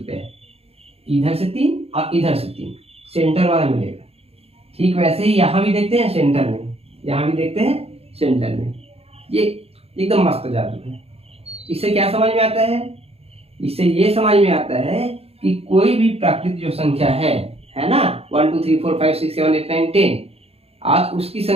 इधर से 3 और इधर से 3, सेंटर वाला मिलेगा। ठीक वैसे ही यहाँ भी देखते हैं सेंटर में, यहाँ भी देखते हैं सेंटर में। ये एकदम मस्त जादू है। इससे क्या समझ में आता है? इससे ये समझ में आता है कि कोई भी प्राकृतिक जो संख्या है ना, 1 2 3 4 5 6 7 8 9 10, आज उसकी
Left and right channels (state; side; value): late; left; 0.29 ms